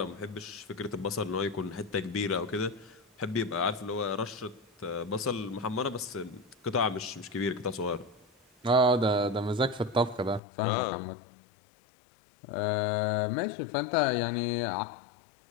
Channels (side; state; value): right; drops out; at 10.4 s